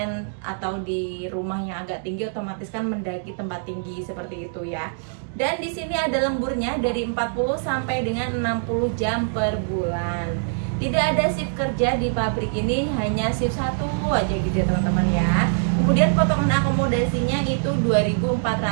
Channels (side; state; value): left; silent; digital silence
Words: atau di rumah yang agak tinggi, otomatis kan mendaki tempat tinggi seperti itu ya. Dan di sini ada lemburnya dari 40 sampai dengan 60 jam per bulan. Tidak ada shift kerja di pabrik ini, hanya shift 1 aja gitu ya teman-teman ya. Kemudian potongan akomodasinya itu